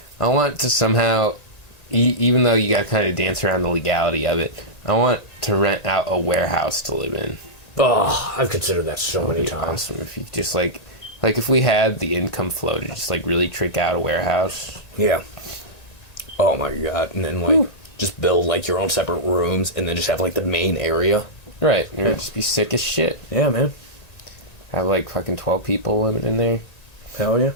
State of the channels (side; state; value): right; late; 1.9 ms